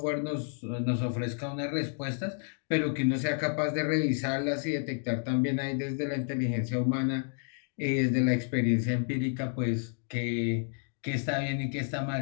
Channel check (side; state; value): right; silent; 57 dB below the other